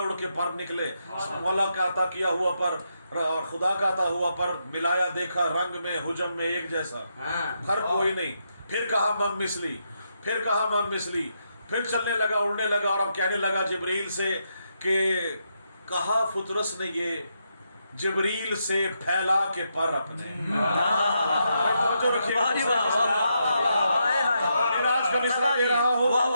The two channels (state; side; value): inverted; both; correlation -0.81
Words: اڑ کے پر نکلے. مولا کا عطا کیا ہوا پر اور خدا کا عطا ہوا پر ملایا, دیکھا رنگ میں حجم میں ایک جیسا, فرق کوئی نہیں. پھر کہا مم مثلی, پھر کہا مم مثلی, پھر چلنے لگا, اڑنے لگا, اور اب کہنے لگا جبریل سے کہ کہا فطرس نے یہ جبریل سے پھیلا کے پر اپنے. توجہ رکھیے, معراج کا مصرع دے رہا ہوں.